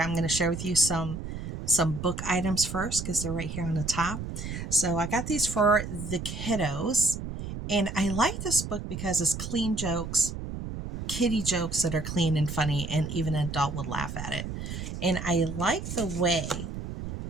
going to share with you some book items first because they're right here on the top. So I got these for the kiddos, and I like this book because it's clean jokes, kiddie jokes that are clean and funny, and even an adult would laugh at it. And I like the way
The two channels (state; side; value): noise; right; rumble, 7 dB below the sound